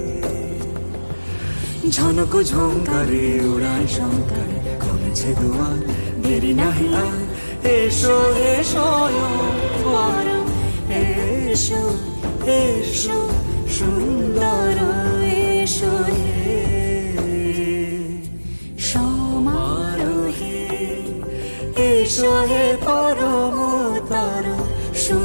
ঝনক ঝঙ্কারে উড়ান শঙ্কারে কমেছে দুয়ার, দেরি নাহি আর, এসো হে স্বয়ং পরম, এসো এসো সুন্দর, এসো হে সমারোহে, এসো হে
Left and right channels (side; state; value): both; inverted; correlation -1.00